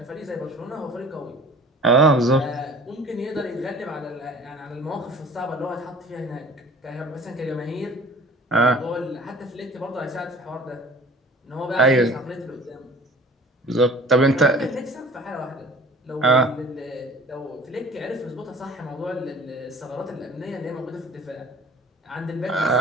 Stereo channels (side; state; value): both; normal; correlation 0.46